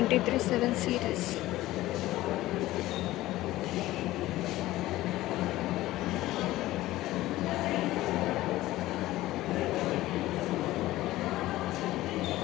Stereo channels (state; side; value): quieter; right; 16.5 dB